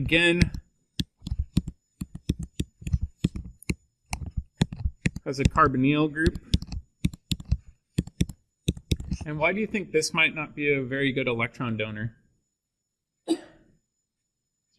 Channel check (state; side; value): identical; both; correlation 1.00